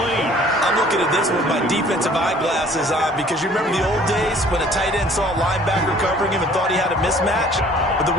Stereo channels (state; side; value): normal; both; correlation 0.54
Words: I'm looking at this with my defensive eyeglasses on because you remember the old days when a tight end saw a linebacker covering him and thought he had a mismatch? But the